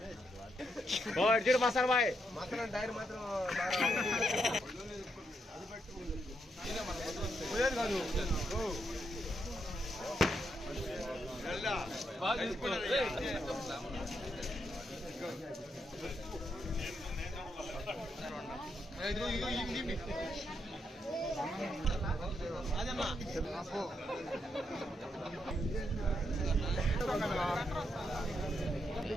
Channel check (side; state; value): both; normal; correlation 0.80